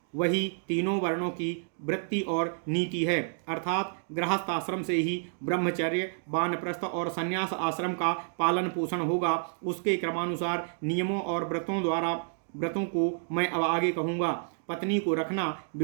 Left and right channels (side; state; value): left; silent; digital silence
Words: वही तीनों वर्णों की वृत्ति और नीति है, अर्थात गृहस्थाश्रम से ही ब्रह्मचर्य, वानप्रस्थ और संन्यास आश्रम का पालन पोषण होगा। उसके क्रमानुसार नियमों और व्रतों को मैं अब आगे कहूँगा। पत्नी को रखना,